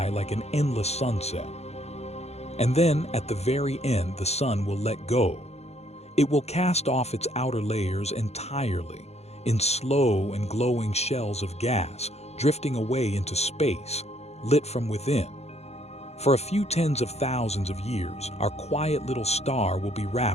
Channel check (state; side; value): late; right; 0.31 ms